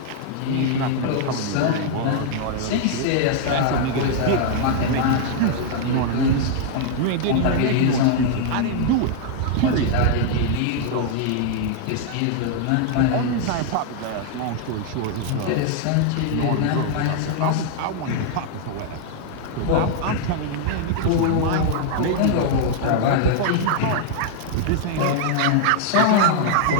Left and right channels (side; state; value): both; different; correlation -0.01